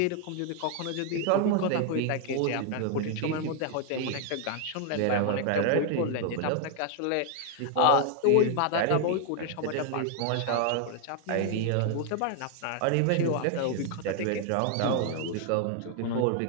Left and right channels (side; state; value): both; different; correlation 0.01